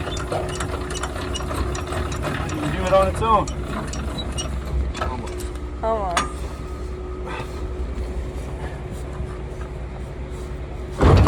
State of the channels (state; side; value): identical; both; correlation 1.00